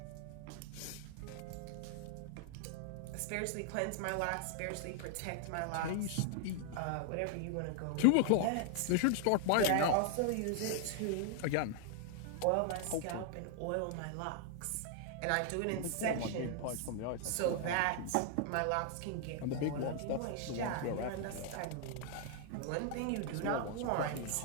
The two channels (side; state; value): both; different; correlation 0.00